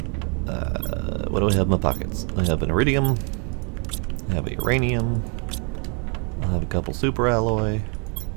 What do I have in my pockets? I have an Iridium. I have a Uranium. I have a couple super alloy.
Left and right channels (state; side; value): quieter; left; 36.6 dB